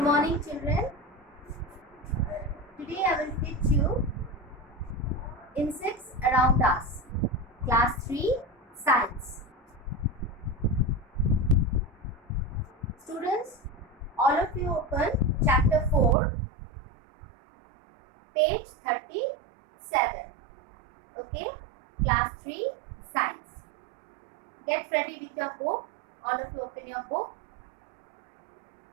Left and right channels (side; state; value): left; drops out; at 16.2 s